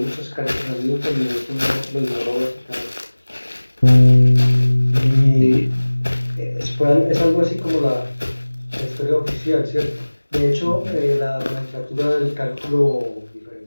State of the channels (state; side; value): inverted; both; correlation -1.00